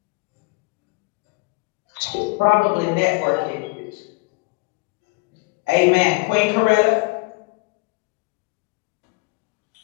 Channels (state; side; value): quieter; right; 28.5 dB